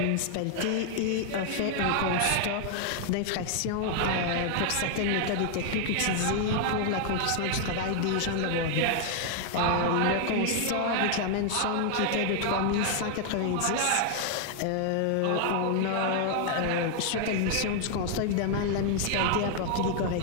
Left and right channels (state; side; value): different; both; correlation 0.00